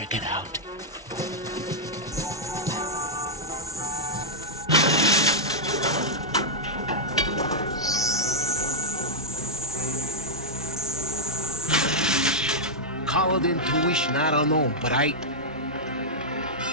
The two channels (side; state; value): both; normal; correlation -0.05